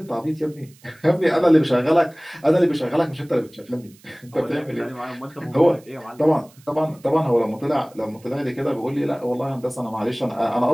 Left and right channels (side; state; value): right; noise; hiss, 28 dB below the sound